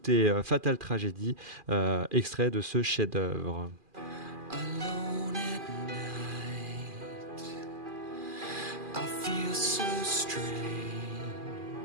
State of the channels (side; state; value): left; late; 2.4 ms